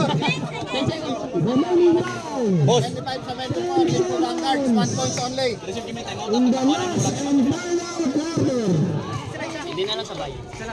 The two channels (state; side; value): identical; both; correlation 1.00